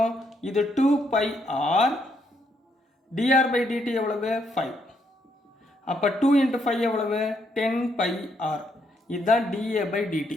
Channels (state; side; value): normal; both; correlation 0.74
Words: இது 2πr, dr/dt எவ்வளவு? 5. அப்போ 2 × 5 எவ்வளவு? 10πr. இதுதான் dA/dt.